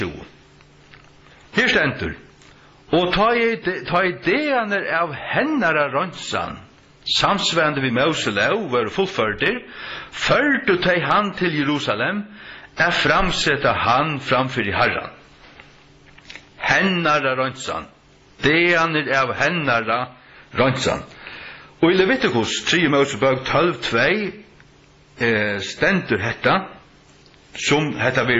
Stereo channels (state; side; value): identical; both; correlation 1.00